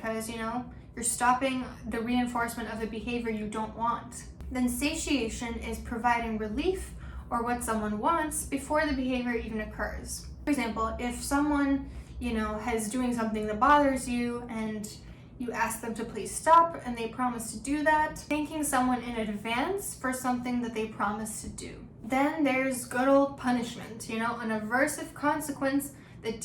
you're stopping the reinforcement of a behavior you don't want. Then satiation is providing relief or what someone wants before the behavior even occurs. For example, if someone, is doing something that bothers you and you ask them to please stop and they promise to do that, thanking someone in advance for something that they promised to do. Then there's good old punishment, an aversive consequence that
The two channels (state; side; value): identical; both; correlation 1.00